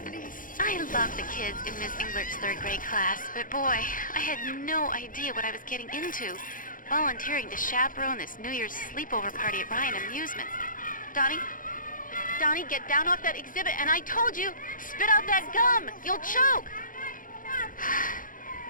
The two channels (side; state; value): right; late; 0.39 ms